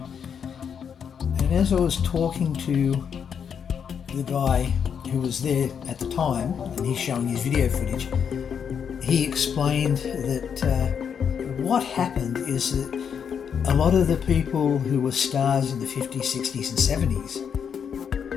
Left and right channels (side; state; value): right; quieter; 7.4 dB